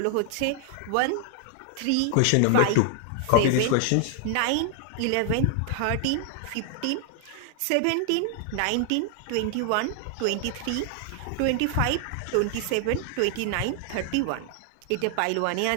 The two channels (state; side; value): different; both; correlation 0.00